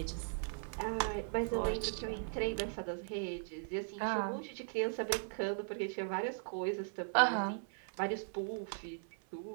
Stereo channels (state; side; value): silent; left; 52 dB below the other